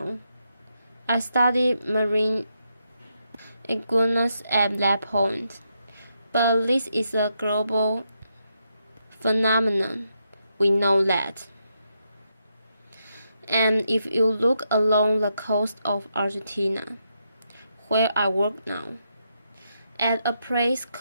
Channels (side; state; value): both; inverted; correlation -0.81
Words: I studied marine iguanas at that point, but this is a global phenomenon. We know that. And if you look along the coast of Argentina, where I work now, at a place